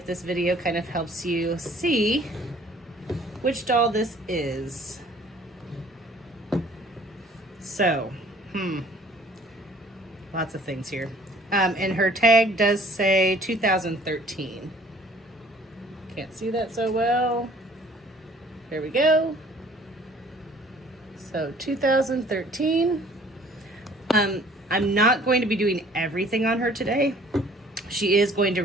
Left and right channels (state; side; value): normal; both; correlation 0.55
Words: this video kind of helps you see which doll this is. So, lots of things here. And her tag does say 2013. Can't see that so well. There we go. So 2013. I'm not going to be doing everything on her today. She is going to